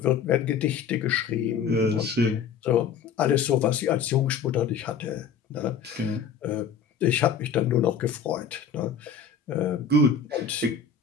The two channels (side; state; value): right; quieter; 6.7 dB